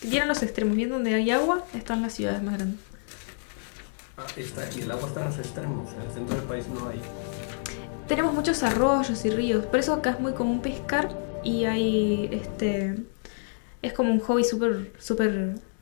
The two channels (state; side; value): silent; right; digital silence